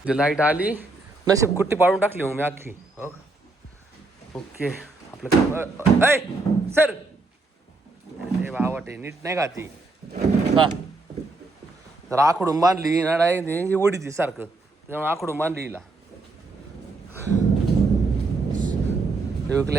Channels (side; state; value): left; quieter; 3.3 dB